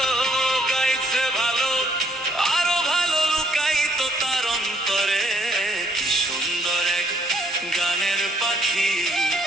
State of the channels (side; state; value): both; normal; correlation 0.67